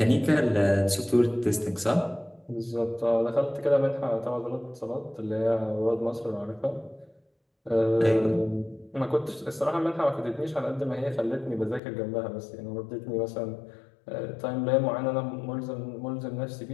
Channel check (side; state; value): right; drops out; at 11.8 s